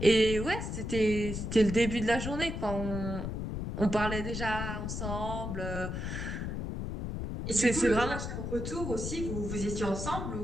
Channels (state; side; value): noise; left; rumble, 4 dB below the sound